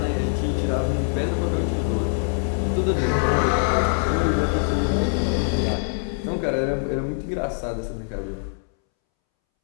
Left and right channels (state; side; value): silent; right; 63 dB below the other